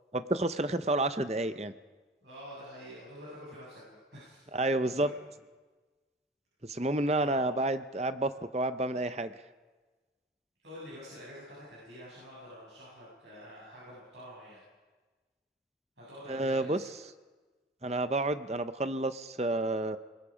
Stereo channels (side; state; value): both; normal; correlation 0.38